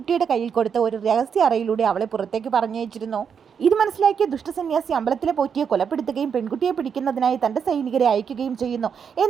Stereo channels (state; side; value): quieter; left; 7.0 dB